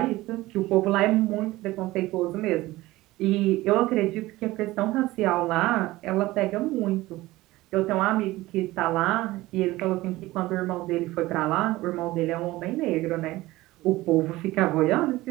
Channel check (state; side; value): quieter; left; 18.3 dB